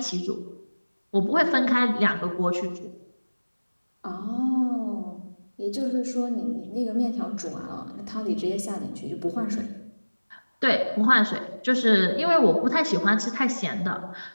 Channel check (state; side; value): inverted; both; correlation -1.00